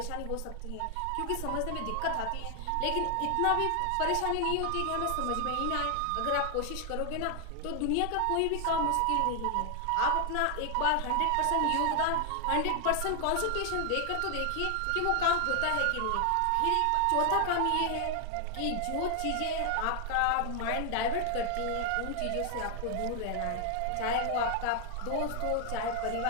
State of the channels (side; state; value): both; different; correlation 0.00